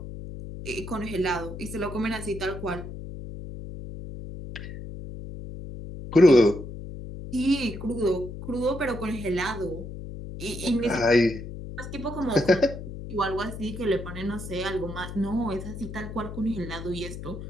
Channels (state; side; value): noise; left; hum, 10 dB below the sound